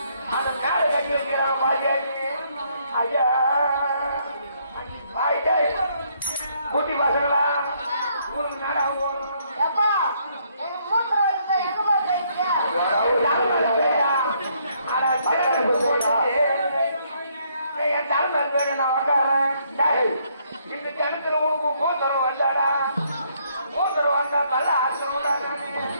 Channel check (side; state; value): both; inverted; correlation -0.69